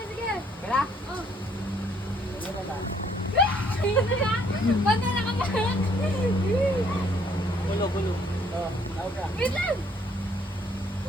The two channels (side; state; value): both; normal; correlation 0.65